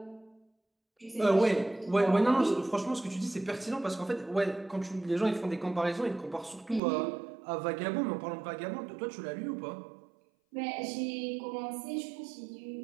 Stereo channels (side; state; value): left; drops out; at 6.8 s